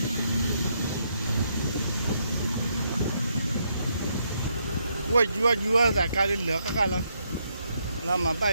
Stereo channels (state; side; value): inverted; both; correlation -0.76